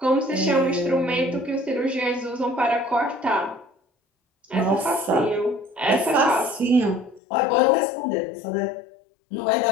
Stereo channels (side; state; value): right; drops out; at 7.2 s